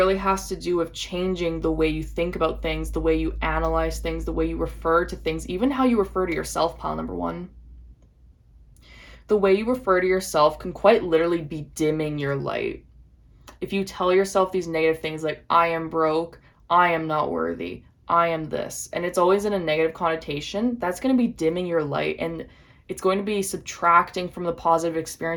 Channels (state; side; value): identical; both; correlation 1.00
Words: has to do with changing the way you think about things, the way you analyze things, the way you refer to things, even how you refer to yourself, pile number 1. The way you refer to yourself can quite literally be dimming your light. If you tell yourself these negative things like, I am broke, I am not worthy, I am this, and it's always in a negative connotation, that's going to be dimming your light, and it's going to be subtracting from the positive